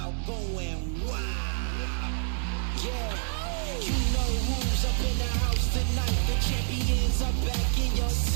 going wow. Yeah, you know who's up in the house tonight. The champions are back in your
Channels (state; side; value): silent; left; 59 dB below the other